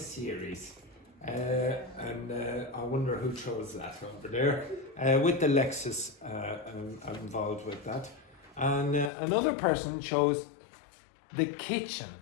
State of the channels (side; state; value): right; drops out; at 9.1 s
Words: And I wonder who chose that over there. With the Lexus involved with that. And another person chose the kitchen.